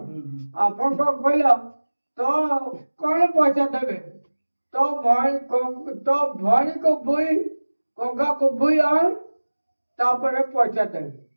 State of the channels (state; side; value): inverted; both; correlation -1.00